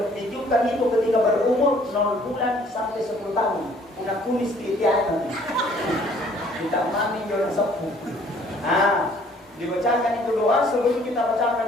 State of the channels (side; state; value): both; normal; correlation 0.59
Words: ditujukan itu ketika berumur 0 bulan sampai 10 tahun Bunda kumis di tiada kita mami jodoh sepuh dibacakan itu doa sebelum kita